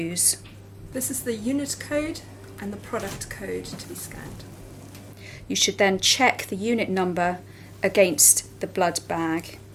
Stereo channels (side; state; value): both; identical; correlation 1.00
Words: This is the unit code and the product code to be scanned. You should then check the unit number against the blood bag.